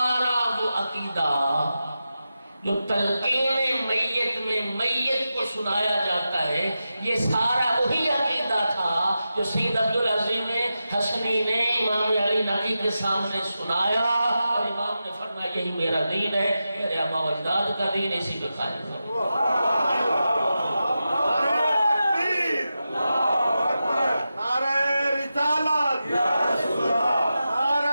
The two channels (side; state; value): both; inverted; correlation -0.91